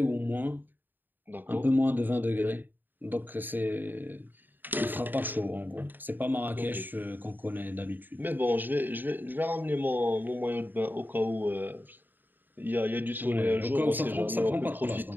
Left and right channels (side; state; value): left; late; 0.091 ms